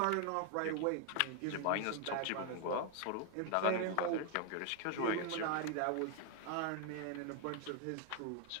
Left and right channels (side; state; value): both; different; correlation 0.01